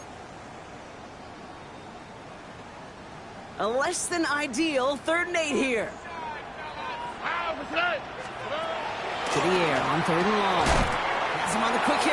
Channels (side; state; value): both; identical; correlation 1.00